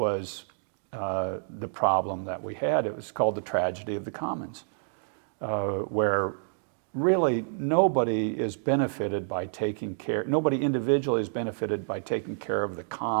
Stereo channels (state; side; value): silent; left; digital silence